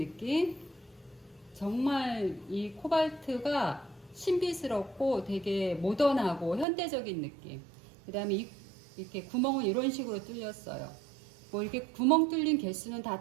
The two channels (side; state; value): left; drops out; at 6.7 s